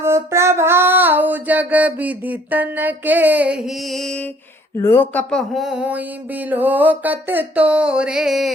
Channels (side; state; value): both; normal; correlation 0.58